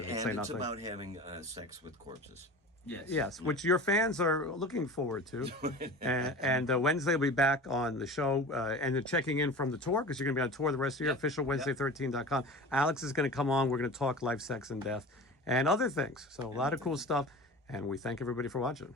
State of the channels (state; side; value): normal; both; correlation 0.35